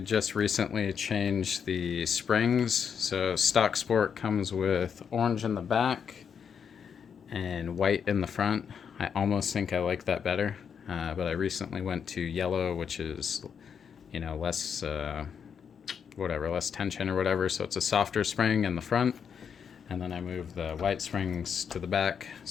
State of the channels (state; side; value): quieter; right; 7.1 dB